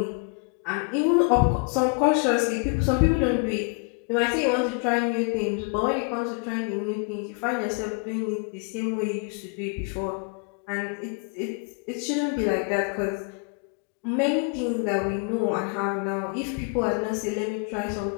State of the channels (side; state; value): right; quieter; 36.0 dB